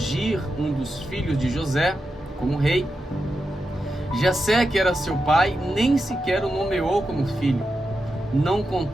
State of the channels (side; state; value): both; normal; correlation 0.88